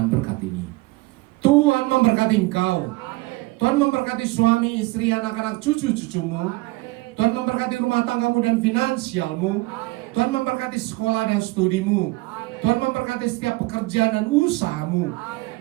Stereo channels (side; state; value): left; quieter; 21.7 dB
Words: berkat ini. Tuhan memberkati engkau. Tuhan memberkati suami, istri, anak-anak, cucu-cucumu. Tuhan memberkati rumah tanggamu dan finansialmu. Tuhan memberkati sekolah dan studimu. Tuhan memberkati setiap pekerjaan dan usahamu.